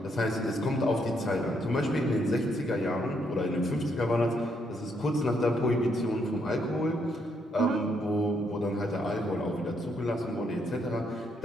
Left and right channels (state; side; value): normal; both; correlation 0.74